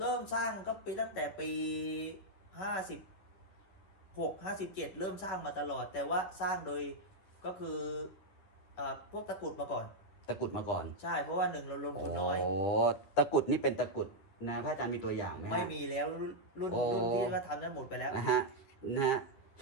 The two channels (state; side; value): late; right; 10 ms